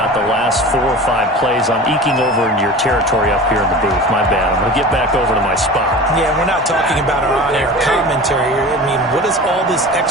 the last 4 or 5 plays I'm eking over into your territory up here in the booth. My bad. I'm going to get back over to my spot. Yeah, we're not talking about our on-air commentary. I mean, what is all this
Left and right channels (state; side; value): normal; both; correlation 0.36